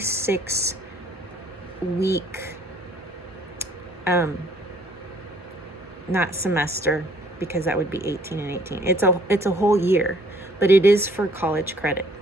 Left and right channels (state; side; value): normal; both; correlation 0.60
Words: not semester, because that would be 18 and 18. It's a whole year, but it is for college credit.